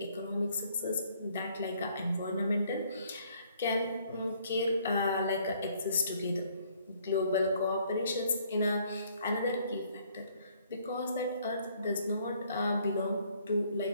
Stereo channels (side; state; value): both; inverted; correlation -0.64